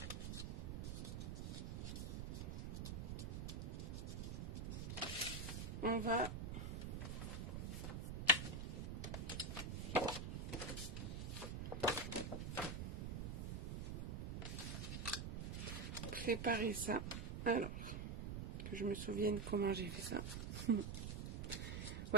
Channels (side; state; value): right; noise; rumble, 3 dB below the sound